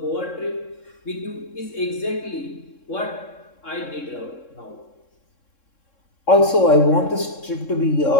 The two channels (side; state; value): right; late; 3.7 ms